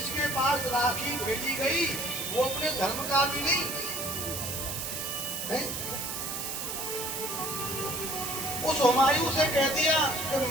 पास राखी भेजी गई वो अपने धर्म का भी नहीं है? उस हुमायूं से कह दिया कि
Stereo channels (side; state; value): right; noise; hiss, 4 dB below the sound